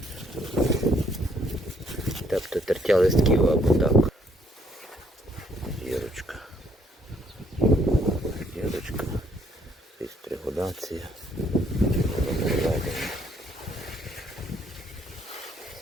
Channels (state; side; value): normal; both; correlation 0.67